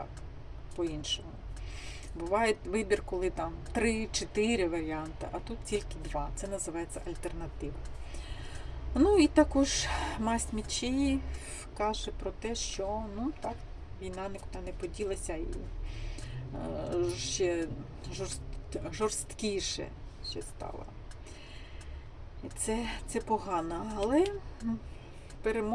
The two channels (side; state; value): both; identical; correlation 1.00